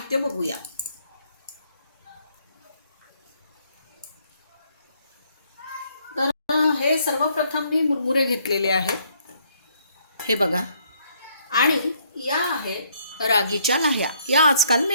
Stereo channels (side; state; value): both; inverted; correlation -0.68